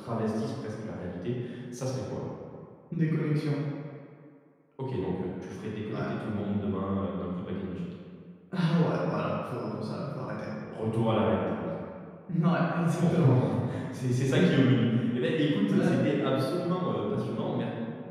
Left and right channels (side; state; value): both; identical; correlation 1.00